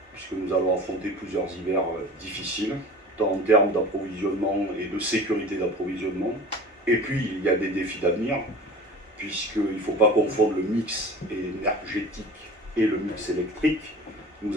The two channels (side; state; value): both; normal; correlation 0.39